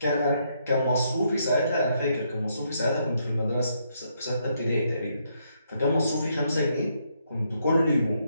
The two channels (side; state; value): both; inverted; correlation -0.75